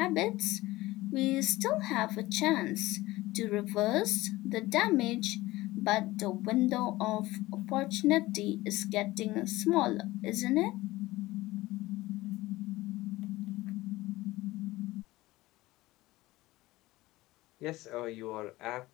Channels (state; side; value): quieter; right; 18.6 dB